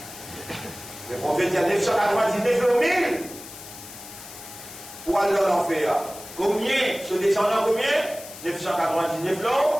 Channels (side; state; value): left; noise; hiss, 15 dB below the sound